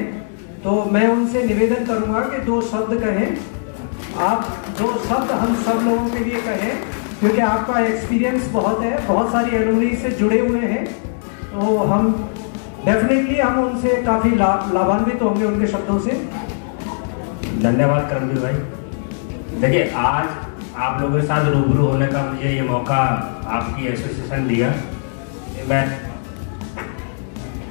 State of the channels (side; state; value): right; silent; digital silence